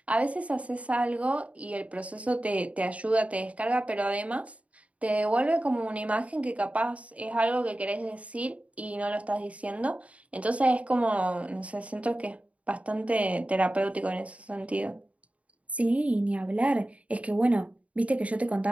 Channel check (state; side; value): late; left; 0.066 ms